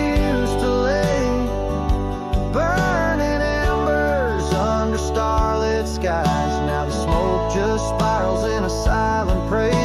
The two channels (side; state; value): both; identical; correlation 1.00